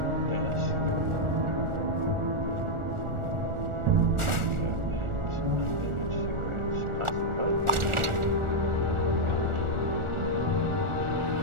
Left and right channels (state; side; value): late; left; 1.4 ms